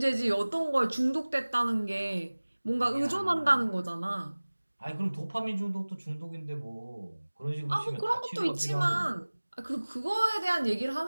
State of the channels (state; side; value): inverted; both; correlation -1.00